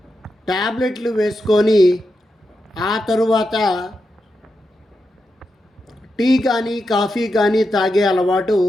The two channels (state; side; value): normal; both; correlation 0.87